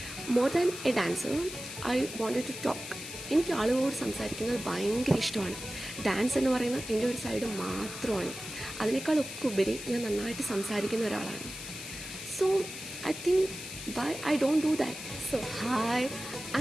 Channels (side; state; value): left; noise; hiss, 10 dB below the sound